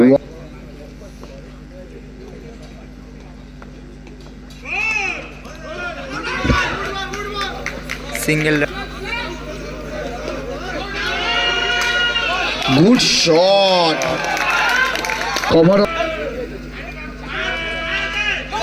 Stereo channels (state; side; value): identical; both; correlation 1.00